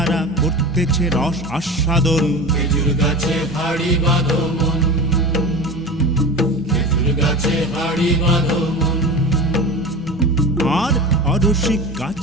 করতেছে রস আস্বাদন। খেজুর গাছে হাড়ি বাঁধো মন, খেজুর গাছে হাড়ি বাঁধো মন। আর অরসিক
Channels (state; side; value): normal; both; correlation 0.30